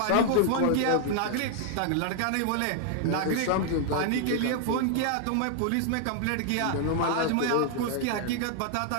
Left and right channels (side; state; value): both; different; correlation 0.00